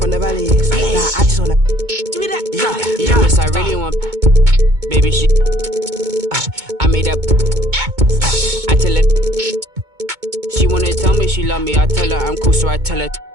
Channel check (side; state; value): left; late; 2.2 ms